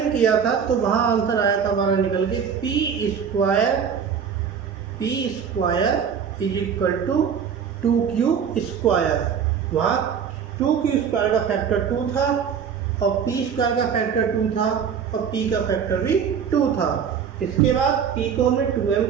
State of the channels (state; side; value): quieter; left; 7.2 dB